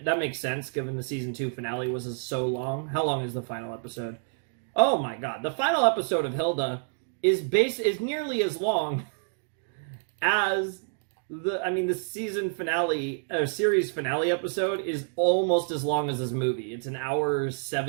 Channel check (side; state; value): left; silent; 59 dB below the other